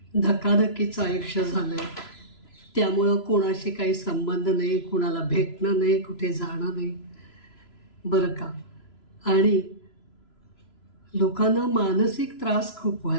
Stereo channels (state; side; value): late; right; 3.0 ms